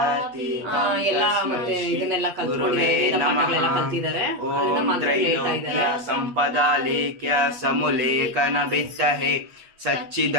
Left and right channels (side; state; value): left; late; 8.3 ms